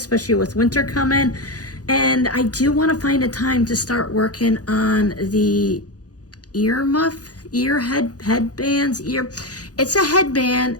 with winter coming. And I do want to find a time to start working on the headbands. It's a headband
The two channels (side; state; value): right; late; 0.68 ms